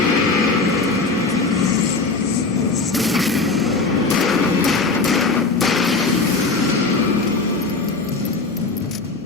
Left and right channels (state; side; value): quieter; right; 3.9 dB